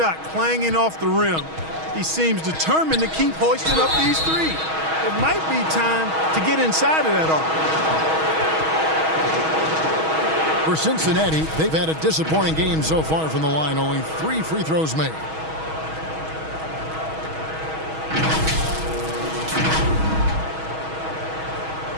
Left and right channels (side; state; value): left; late; 6.3 ms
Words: clanging off the rim, he seems determined to keep hoisting up these three. It might be time to get inside of that arc. For Cincinnati, they've had a disappointing game so far from the line. Only 3 free throws made.